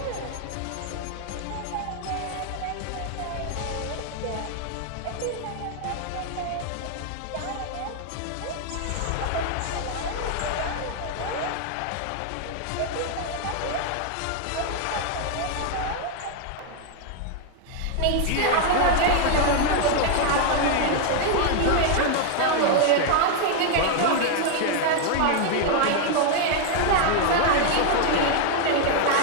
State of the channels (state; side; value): different; both; correlation 0.00